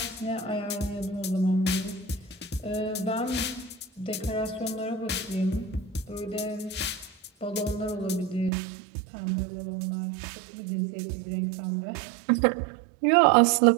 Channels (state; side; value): drops out; left; at 8.5 s